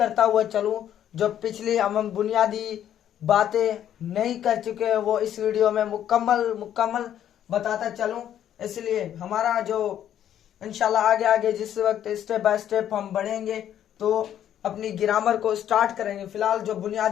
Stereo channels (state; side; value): quieter; right; 10.6 dB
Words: हुआ चलूं, जो पिछली हम बुनियादी बातें नहीं कर चुके हैं वो इस वीडियो में मुकम्मल बताता चलूं। इसलिए हमारा जो इंशाल्लाह आगे आगे जिस वक्त स्टेप बाय स्टेप हम बढ़ेंगे तो अपनी ग्रामर को स्टार्ट करेंगे। फिलहाल जो